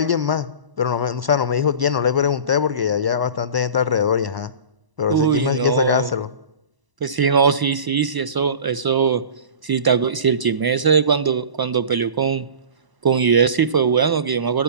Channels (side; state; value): left; late; 1.0 ms